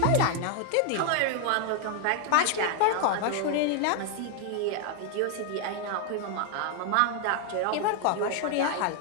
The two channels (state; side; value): different; both; correlation 0.00